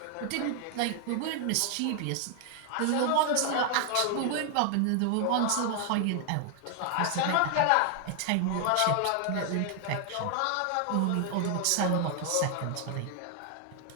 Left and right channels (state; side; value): different; both; correlation 0.00